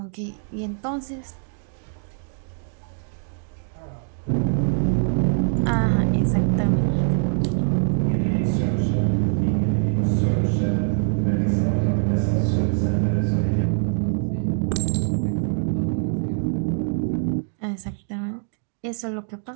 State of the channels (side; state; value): left; silent; 57 dB below the other